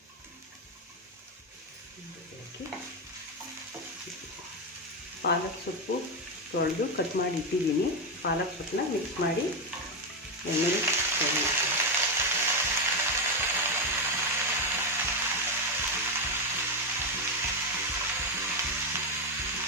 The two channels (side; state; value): both; normal; correlation 0.08